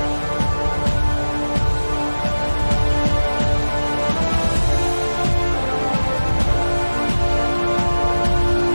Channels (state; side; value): inverted; both; correlation -1.00